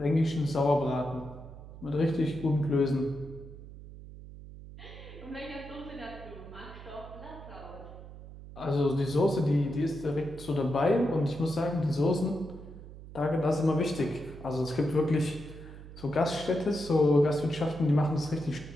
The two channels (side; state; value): right; noise; hum, 15 dB below the sound